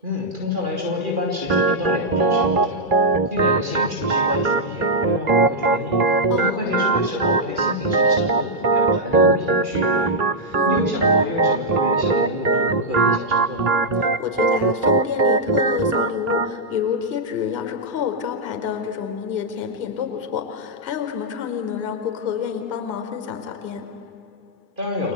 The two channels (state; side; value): late; left; 2.3 ms